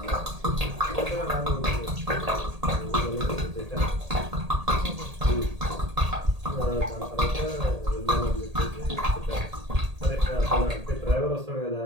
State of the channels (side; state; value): left; late; 1.8 ms